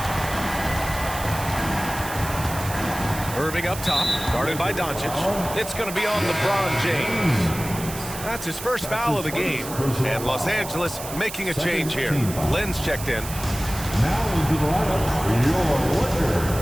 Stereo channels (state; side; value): noise; right; hiss, 10 dB below the sound